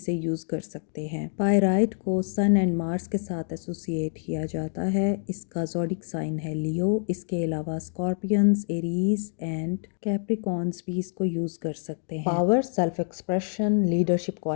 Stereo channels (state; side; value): silent; right; 55 dB below the other